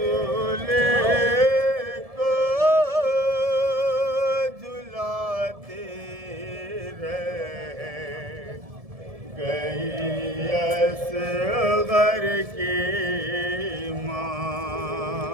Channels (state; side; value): late; left; 1.7 ms